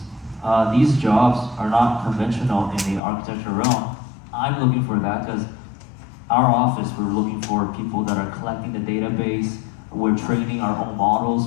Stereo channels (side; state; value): right; drops out; at 3.0 s